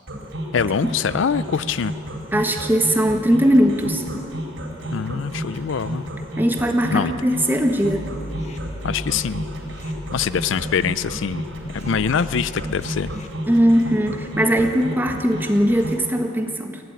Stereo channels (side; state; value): both; normal; correlation 0.69